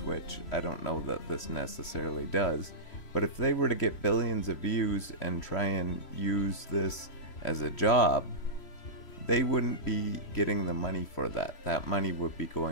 I don't know that this necessarily does, but if they were to get billions of views and try and use this as a job, they wouldn't be getting the money for that. That money would be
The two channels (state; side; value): late; right; 3.1 ms